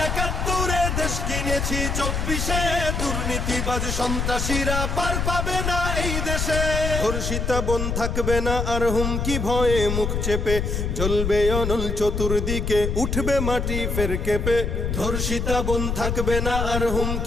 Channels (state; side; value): noise; left; rumble, 1 dB below the sound